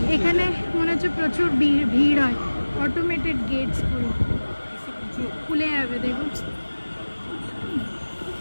এখানে মনে হচ্ছে প্রচুর ভিড় হয়, অটোমেটেড গেটস পুরো খুলে যাবে, দেখুন।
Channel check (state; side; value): inverted; both; correlation -1.00